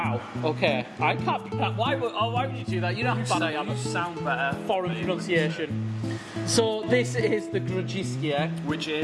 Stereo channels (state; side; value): identical; both; correlation 1.00